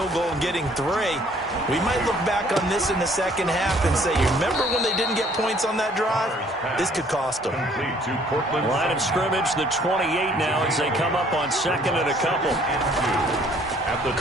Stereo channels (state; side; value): normal; both; correlation 0.60